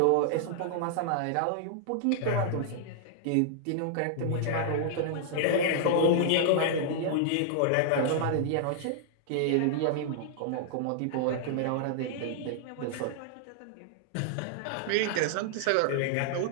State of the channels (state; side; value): different; both; correlation -0.01